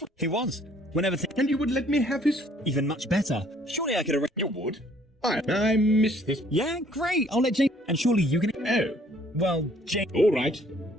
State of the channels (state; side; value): normal; both; correlation 0.61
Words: He was. Whenever... And you would let me have his... Even much better. Surely I could arrange... You would? I missed this. Yeah, great. I'll let Jane... And surely you can... Oh. Well, Jane... All right.